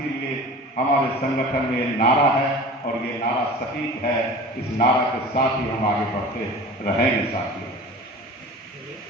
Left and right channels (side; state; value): both; normal; correlation 0.39